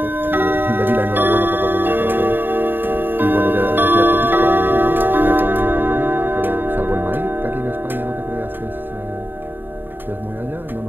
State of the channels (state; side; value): late; left; 0.094 ms